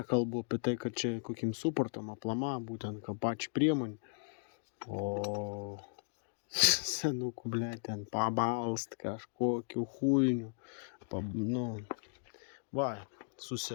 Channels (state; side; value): silent; right; digital silence